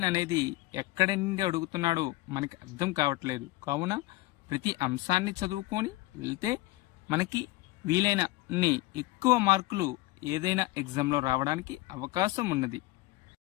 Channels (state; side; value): quieter; right; 19.5 dB